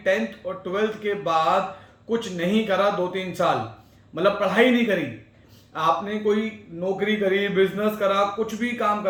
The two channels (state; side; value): identical; both; correlation 1.00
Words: 10th और 12th के बाद कुछ नहीं करा 2-3 साल, मतलब पढ़ाई नहीं करी, आपने कोई नौकरी करी, बिजनेस करा, कुछ भी काम